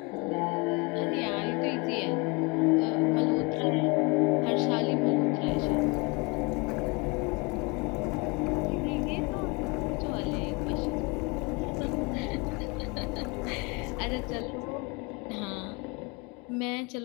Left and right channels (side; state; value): right; quieter; 28.1 dB